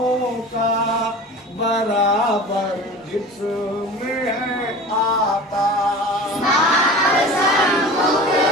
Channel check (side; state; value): both; normal; correlation 0.37